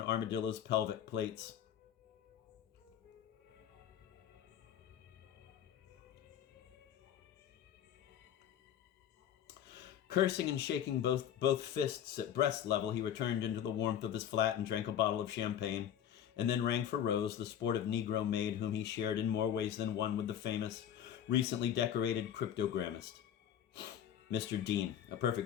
armadillo's pelvic plates. Cursing and shaking both fists at breast level, he returned into the warmth of his flat and drank a bottle of champagne, and then rang for Rose, the sportive Negro maid whom he shared in more ways than one with the famous, recently decorated cryptogrammist, Mr. Dean, a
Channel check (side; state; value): right; quieter; 9.9 dB